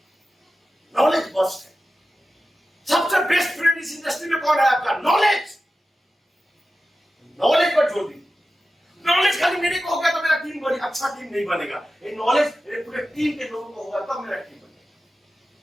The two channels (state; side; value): normal; both; correlation 0.94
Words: नॉलेज बस्ट है। सबसे बेस्ट फ्रेंड इस इंडस्ट्री में कौन है आपका? नॉलेज। नॉलेज पर जोर दीजिए। नॉलेज खाली मेरे को होगा तो मेरा टीम बड़ी अच्छा टीम नहीं बनेगा। ये नॉलेज पूरे टीम के लोगों को होगा तब मेरा टीम बनेगा।